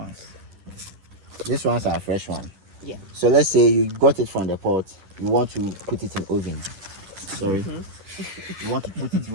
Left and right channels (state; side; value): late; left; 10 ms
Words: These ones are fresh one. Yeah. So let's say you got it from the pot, you want to put it in oven. Sorry. You want to put it in